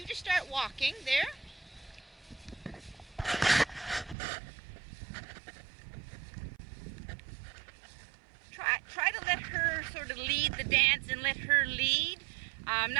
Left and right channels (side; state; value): left; drops out; at 4.2 s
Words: just start walking there. Try to let her sort of lead the dance and let her lead.